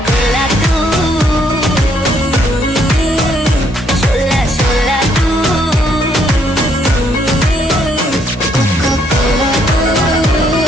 कोला तू, शोला शोला तू, कोका कोला तू,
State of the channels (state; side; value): normal; both; correlation 0.70